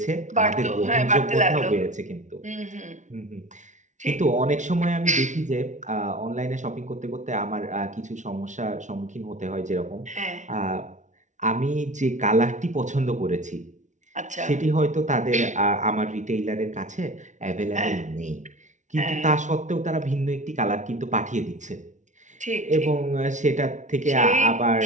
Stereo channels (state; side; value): late; left; 0.36 ms